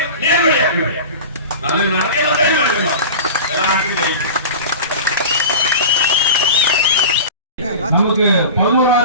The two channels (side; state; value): both; inverted; correlation -0.32